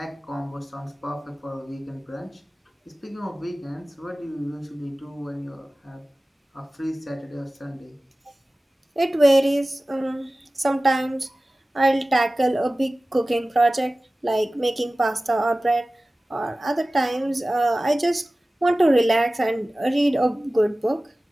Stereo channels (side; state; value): both; normal; correlation 0.97